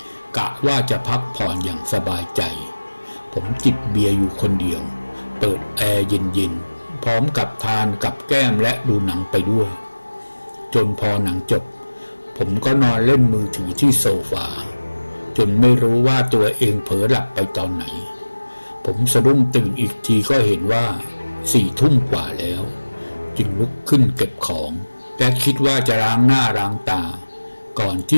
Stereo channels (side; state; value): both; inverted; correlation -1.00